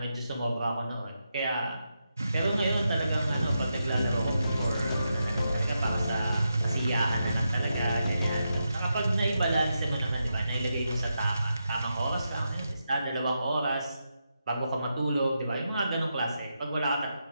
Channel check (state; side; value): inverted; both; correlation -0.85